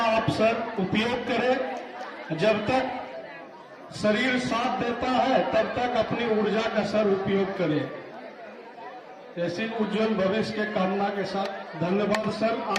आप सर उपयोग करें। जब तक शरीर साथ देता है तब तक अपनी ऊर्जा का सर उपयोग करें। ऐसी उज्जवल भविष्य के कामना के साथ धन्यवाद सर,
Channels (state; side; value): identical; both; correlation 1.00